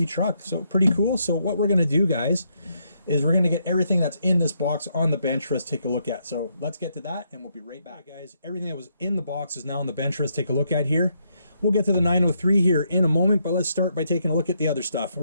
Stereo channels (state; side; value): inverted; both; correlation -0.76